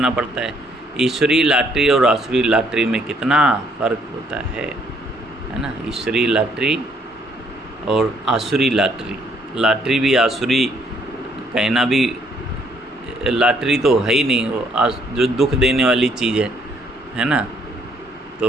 पड़ता है। ईश्वरीय लॉटरी और आसुरी लॉटरी में कितना फ़र्क होता है ना। ईश्वरीय लॉटरी और आसुरी लॉटरी, लॉटरी भी आसुरी कहना भी, लॉटरी तो है ही नहीं, वो जो दुख देने वाली चीज़ है ना।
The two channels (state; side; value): normal; both; correlation 0.67